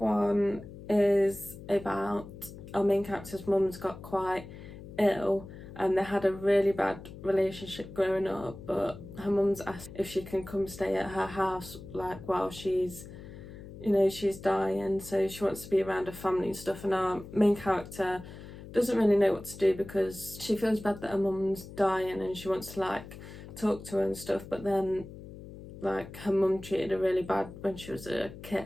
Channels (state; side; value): noise; left; hum, 14 dB below the sound